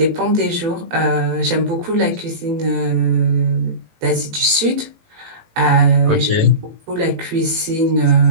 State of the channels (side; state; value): left; late; 18 ms